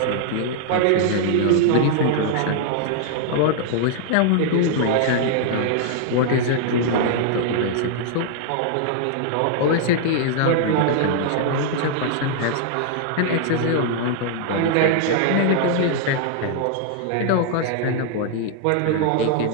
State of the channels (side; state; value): both; different; correlation -0.01